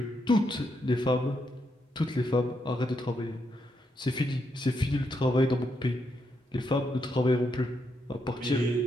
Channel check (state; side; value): normal; both; correlation 0.80